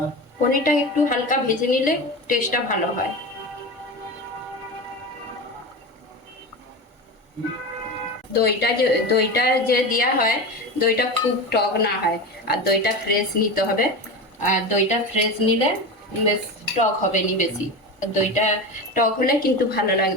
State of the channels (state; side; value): normal; both; correlation 0.24